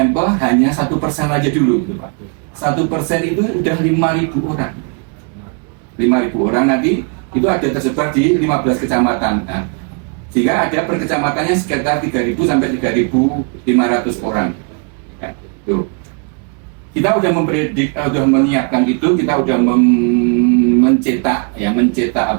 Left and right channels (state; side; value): quieter; left; 36.5 dB